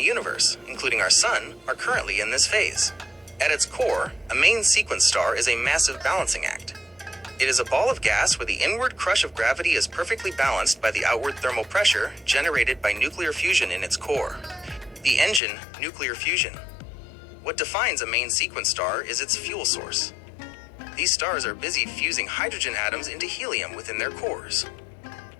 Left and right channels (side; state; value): right; drops out; at 15.4 s